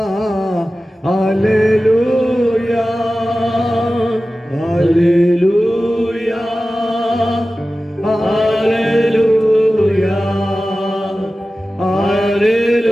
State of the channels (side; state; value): both; normal; correlation 0.95